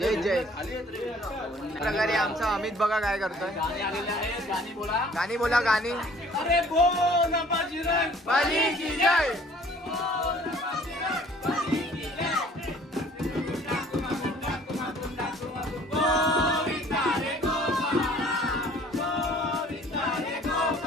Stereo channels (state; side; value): normal; both; correlation 0.54